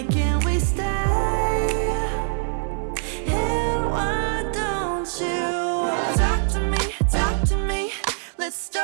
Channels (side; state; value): left; silent; digital silence